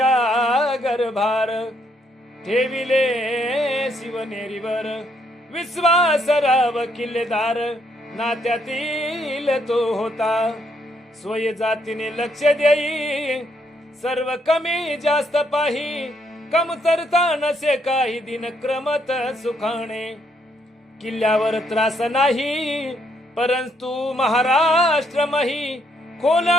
गर्भार ठेविले शिवनेरीवर. विश्वासराव किल्लेदार नात्यातील तो होता. स्वय जातीने लक्ष देई सर्व कमी जास्त पाही. कमतरता नसे काही दिन क्रमत सुखाणे. किल्ल्यावर त्रास नाही परंतु महाराष्ट्र मही. खोल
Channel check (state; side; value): normal; both; correlation 0.73